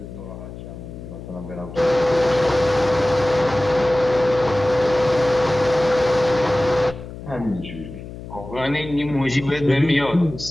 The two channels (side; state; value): left; noise; hum, 13 dB below the sound